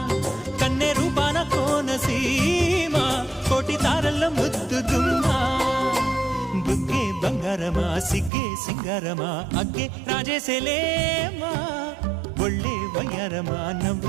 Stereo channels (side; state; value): left; drops out; at 8.3 s